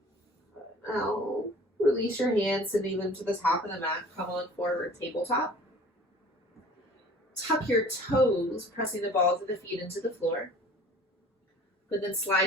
Now, release your hands, sending them to the top of the mat. Come on forward, tabletop. Tuck your toes, pressing the balls of the feet into the floor. But then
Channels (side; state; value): both; normal; correlation 0.47